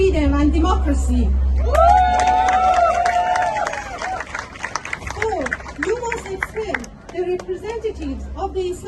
and democracy. 4. You must expel the representatives of the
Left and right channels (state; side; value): identical; both; correlation 1.00